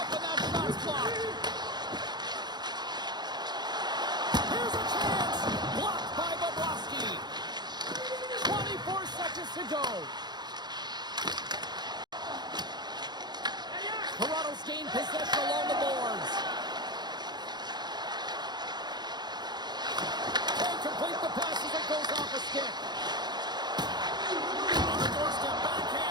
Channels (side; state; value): left; late; 0.21 ms